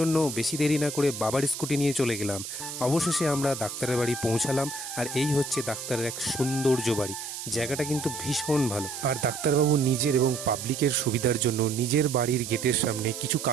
বেশি দেরি না করে বাবার স্কুটি নিয়ে চলে গেলাম। অবশেষে আমরা ডাক্তারের বাড়ি পৌঁছালাম। আর এই হচ্ছে ডাক্তারের এক সৌন্দর্য বাড়ি। জায়গাটা কিন্তু ভীষণ ভালো। আর ডাক্তারবাবু নিজের এবং পাবলিকের সুবিধার জন্য নিজের বাড়ির গেটের সামনে কিছু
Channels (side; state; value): right; noise; hiss, 8 dB below the sound